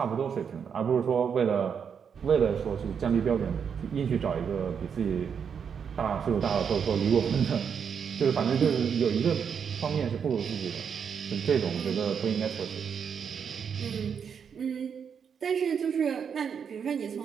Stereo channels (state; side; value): quieter; left; 7.0 dB